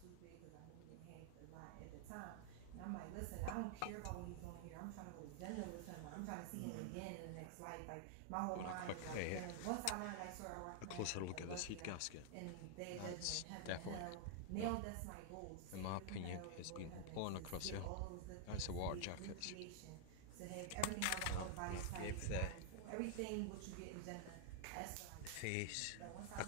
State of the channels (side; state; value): both; different; correlation -0.01